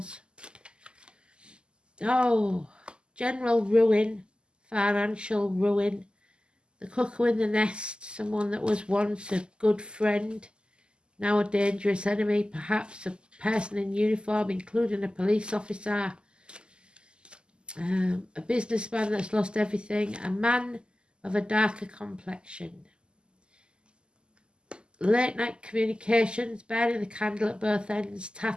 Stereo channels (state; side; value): late; left; 0.049 ms